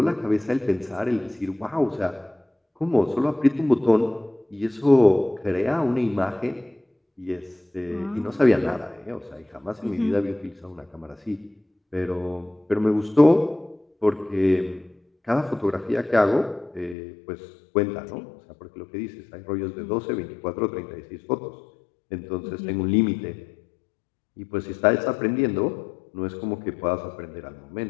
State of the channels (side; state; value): right; drops out; at 16.9 s